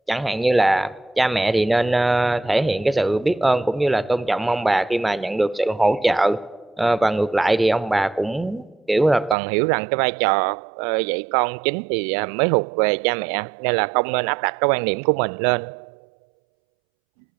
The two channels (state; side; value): drops out; left; at 9.3 s